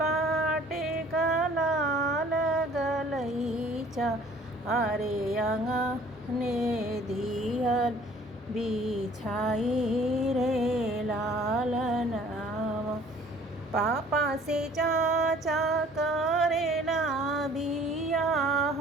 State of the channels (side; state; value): both; normal; correlation 0.54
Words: पाटका लाल गलईच्या अरे अंगणे दिहल बिछाई रे लाल नावा पापा से चाचा करेला बियाह